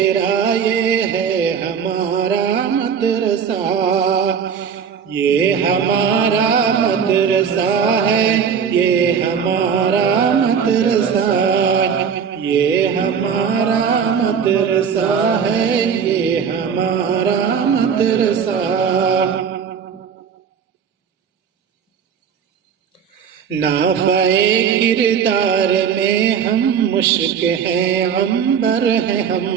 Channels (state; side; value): quieter; left; 7.3 dB